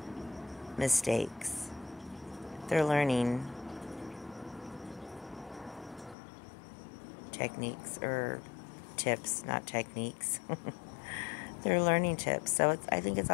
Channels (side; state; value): right; drops out; at 6.2 s